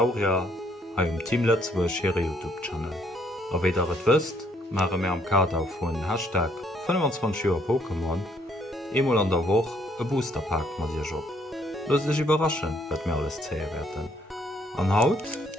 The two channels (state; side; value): normal; both; correlation 0.68